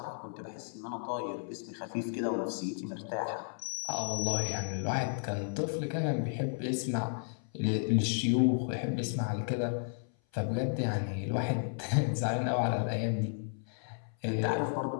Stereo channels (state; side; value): silent; right; 56 dB below the other